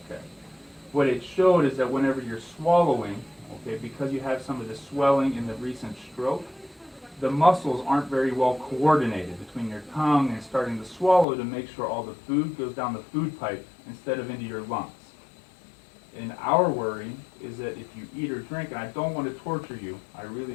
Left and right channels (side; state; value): right; drops out; at 11.2 s